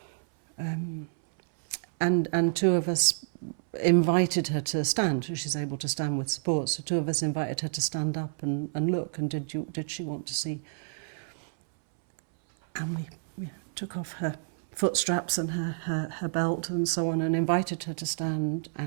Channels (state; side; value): silent; left; 59 dB below the other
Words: And two of us invited her to stand, so she's able to stand with support. So two of us invited her to stand up and look, and did she want to see? And we took off her foot straps and her belt and so on, and invited her to stand,